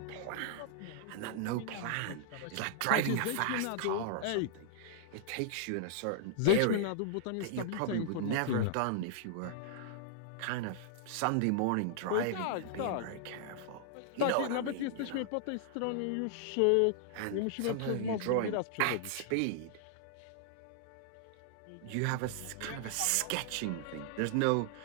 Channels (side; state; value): both; different; correlation -0.01